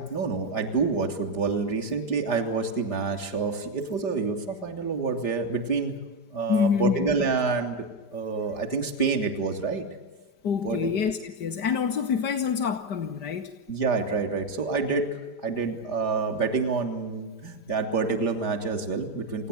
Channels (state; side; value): late; right; 5.0 ms